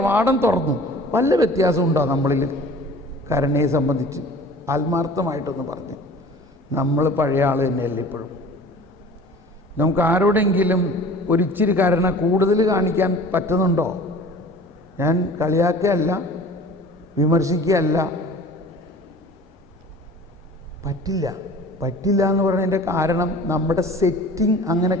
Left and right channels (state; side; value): normal; both; correlation 0.44